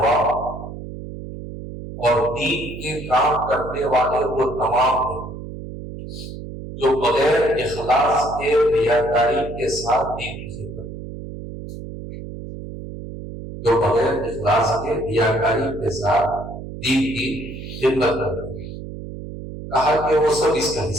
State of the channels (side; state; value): right; noise; hum, 10 dB below the sound